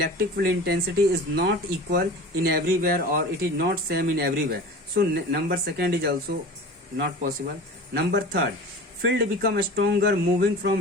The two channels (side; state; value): both; normal; correlation 0.36